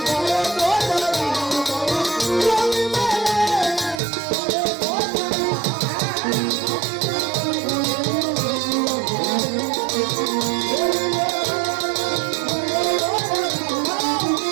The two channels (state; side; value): drops out; left; at 4.0 s